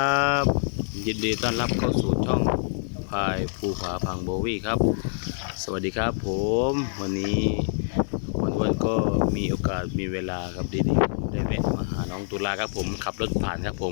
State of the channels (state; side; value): silent; right; 61 dB below the other